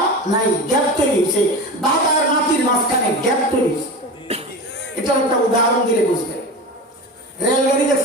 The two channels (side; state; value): both; normal; correlation 0.28